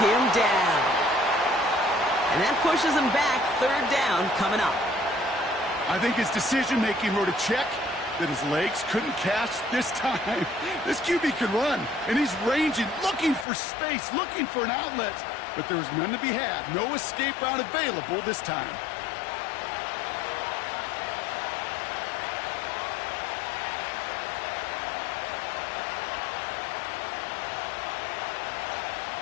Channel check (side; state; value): right; drops out; at 13.5 s